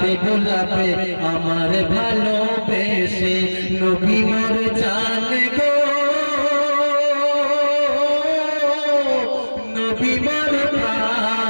বোলাবে আমার ভালোবেসে। নবী মোর জানে গো নবী মোর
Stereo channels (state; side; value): inverted; both; correlation -1.00